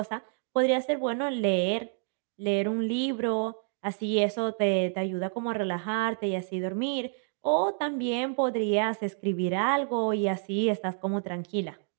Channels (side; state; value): left; silent; 59 dB below the other